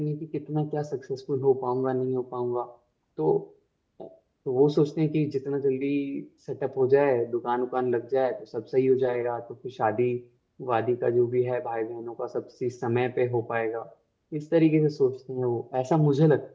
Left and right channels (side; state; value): both; identical; correlation 1.00